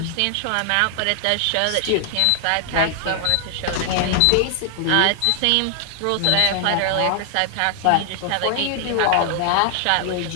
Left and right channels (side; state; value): both; different; correlation 0.00